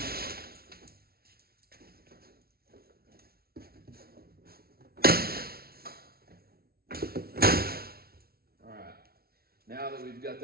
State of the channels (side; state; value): left; late; 0.44 ms